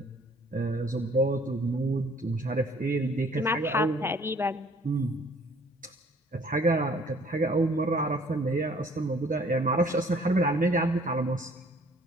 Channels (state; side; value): normal; both; correlation 0.57